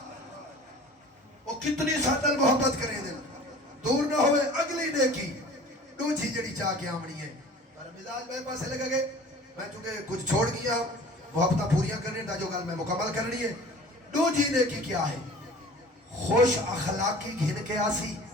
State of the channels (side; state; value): both; normal; correlation 0.44